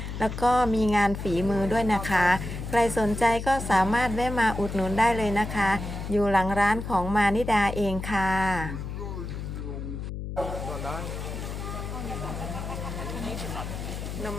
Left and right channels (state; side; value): noise; left; hum, 6 dB below the sound